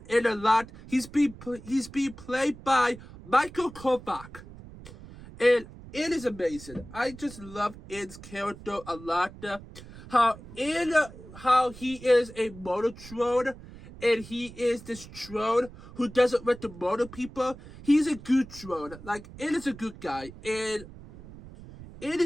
N a lot. He's being played by Michael Kovac. And N is amazing. I just love N's character a lot. How he is a Monotron. And he is this drone who doesn't want to murder people. He's a good drone. Like, N is a good guy. And it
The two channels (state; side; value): noise; right; rumble, 17 dB below the sound